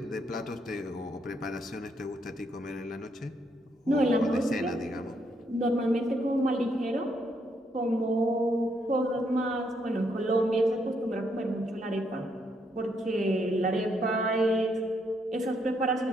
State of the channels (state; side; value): normal; both; correlation 0.75